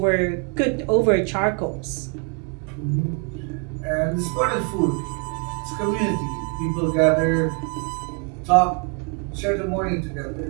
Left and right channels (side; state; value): left; quieter; 35.9 dB